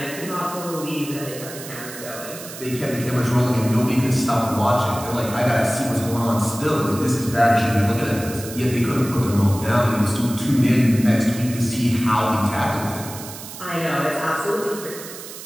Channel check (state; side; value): noise; right; hiss, 13 dB below the sound